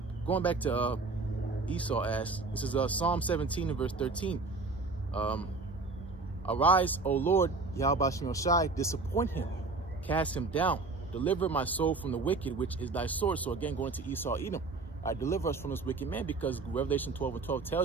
going back to Esau asked. This is Psalm 17 and verse 13. Arise, O Lord, Yahweh Shem Shai, disappoint him, cast him down, deliver my soul from the wicked, which is thy sword. So again, going to Esau, Edom, deliver us from this wicked man, because Revelation 12 and 12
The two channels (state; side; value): quieter; left; 3.7 dB